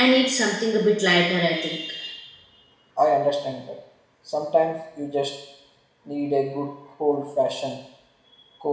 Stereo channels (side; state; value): both; identical; correlation 1.00